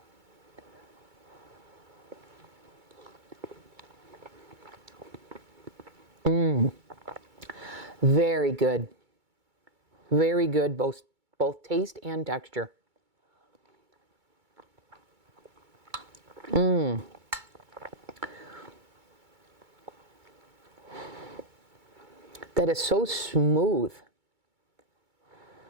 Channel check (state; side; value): late; left; 2.2 ms